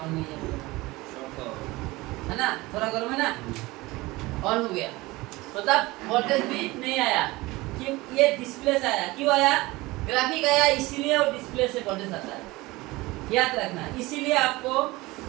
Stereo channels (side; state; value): left; quieter; 21.0 dB